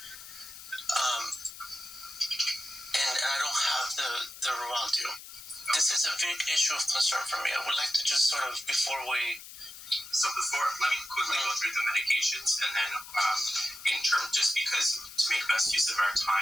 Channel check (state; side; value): noise; left; hiss, 14 dB below the sound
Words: And I don't have the Rovaltio. This is a big issue of concern for me. I would like to just sort of, let me quickly go through the medications, and then just because to make best use of our